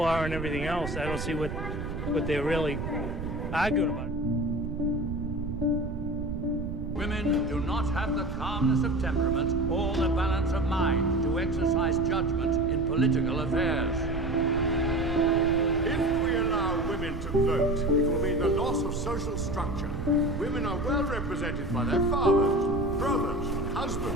and everything else. I don't see what they're really arguing about. Women do not have the calmness of temperament or the balance of mind to exercise judgment in political affairs. If we allow women to vote, it will mean the loss of social structure. Women are well represented by their fathers, brothers,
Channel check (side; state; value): right; noise; rumble, 6 dB below the sound